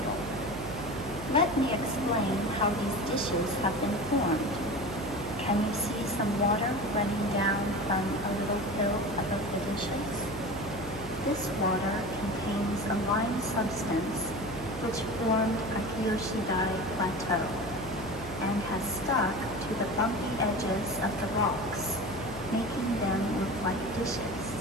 Let me explain how these dishes have been formed. Can you see some water running down from a little hill above the dishes? This water contains a lime substance which formed Akiyoshido Plateau and has stuck to the bumpy edges of the rocks, making them look like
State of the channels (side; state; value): right; noise; hum, 13 dB below the sound